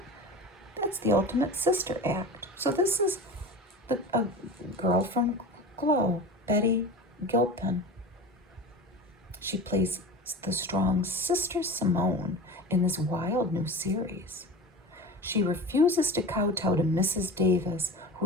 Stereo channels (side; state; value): both; normal; correlation 0.32